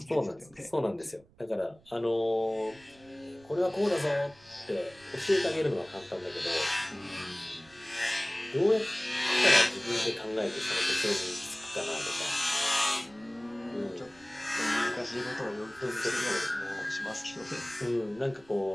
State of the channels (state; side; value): noise; right; rumble, 28 dB below the sound